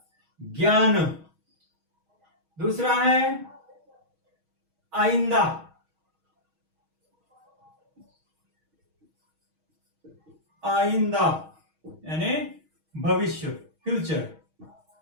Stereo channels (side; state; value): left; late; 6.3 ms